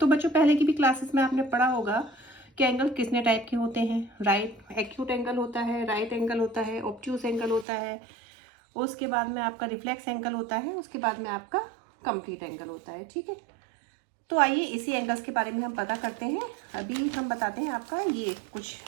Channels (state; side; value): drops out; left; at 7.7 s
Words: बच्चों पहले की भी क्लासेस में आपने पढ़ा होगा कि एंगल कितने टाइप के होते हैं। राइट एक्यूट एंगल होता है, राइट एंगल होता है, ऑब्ट्यूस एंगल होता है, उसके बाद में आपका रिफ्लेक्स एंगल होता है, उसके बाद में आपका कंप्लीट एंगल होता है। ठीक है, तो आइए इसी एंगल्स के बारे में हम पता करते हैं। अभी हम बताते हैं आपका, ये कुछ